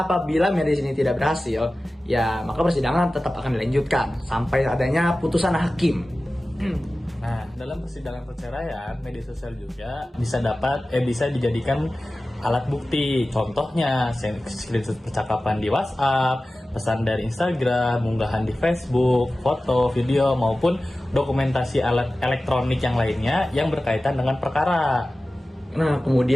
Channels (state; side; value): normal; both; correlation 0.96